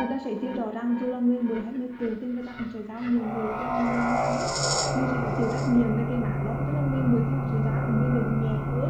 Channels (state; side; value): identical; both; correlation 1.00